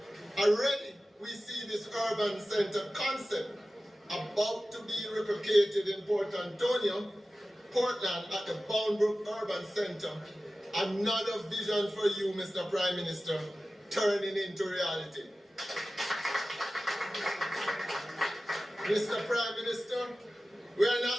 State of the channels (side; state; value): both; normal; correlation 0.96